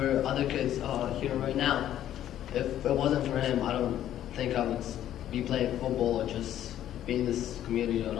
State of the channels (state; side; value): quieter; right; 11.7 dB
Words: other kids here right now. If it wasn't for him, I don't think I would be playing football or just be in this community at